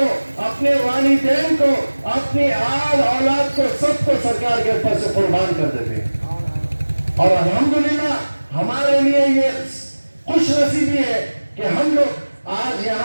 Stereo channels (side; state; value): both; inverted; correlation -1.00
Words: اپنے والدین کو، اپنی آل اولاد کو، سب کو سرکار کے اوپر سے قربان کر دیتے ہیں۔ اور الحمدللہ ہمارے لیے یہ خوش نصیبی ہے کہ ہم لوگ آج